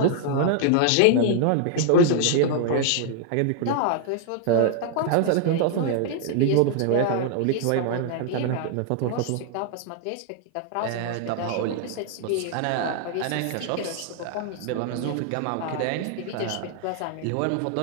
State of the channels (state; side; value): different; both; correlation 0.00